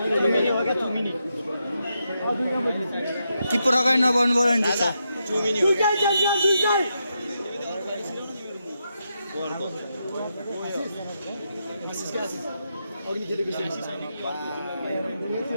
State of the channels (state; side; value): inverted; both; correlation -0.84